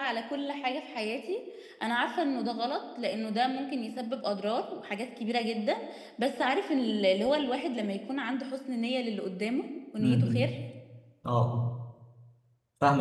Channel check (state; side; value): identical; both; correlation 1.00